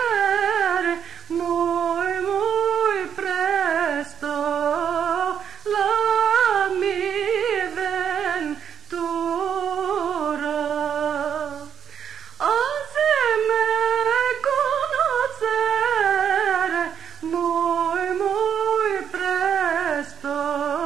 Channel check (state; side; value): quieter; left; 8.4 dB